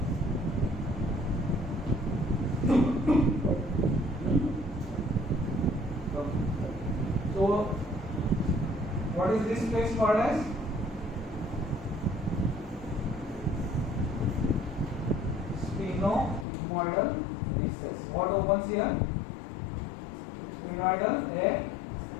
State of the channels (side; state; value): right; drops out; at 16.4 s